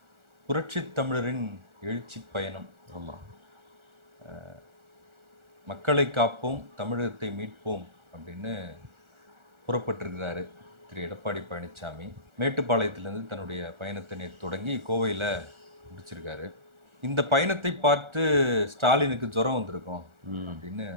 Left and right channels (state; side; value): late; left; 1.4 ms